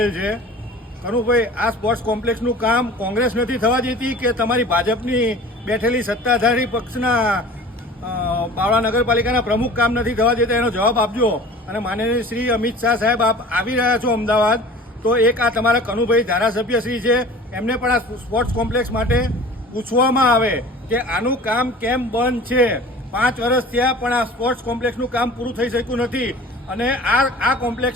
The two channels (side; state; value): both; normal; correlation 0.42